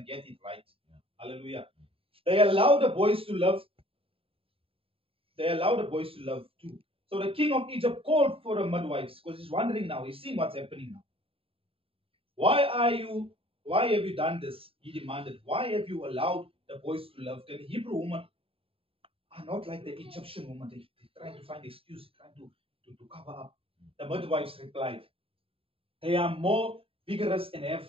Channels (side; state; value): left; late; 0.27 ms